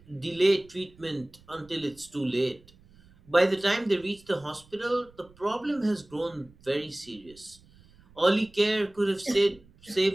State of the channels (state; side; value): noise; right; rumble, 27 dB below the sound